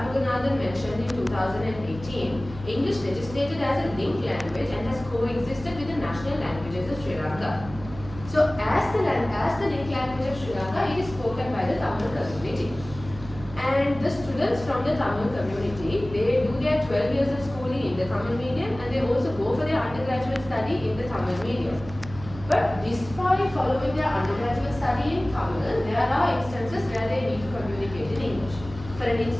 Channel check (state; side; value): noise; right; hum, 14 dB below the sound